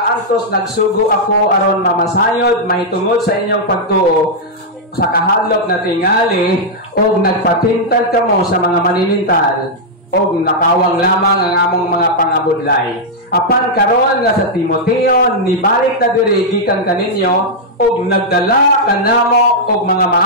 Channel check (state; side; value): normal; both; correlation -0.05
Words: nagsugo ako aron mamasayod, mahitungod sa inyong pagtuo sa kahadlok na tingali o nagpatintag kamo sa mga maninintal o nakawang lamang ang among mga pangabudlay. Apan karon nga sa Timoteo nibalik na diri gikan kaninyo og nagdala kanamo og mga